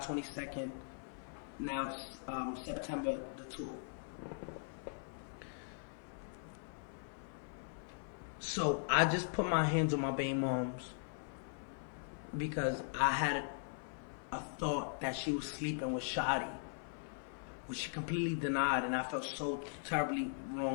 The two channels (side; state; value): right; silent; 51 dB below the other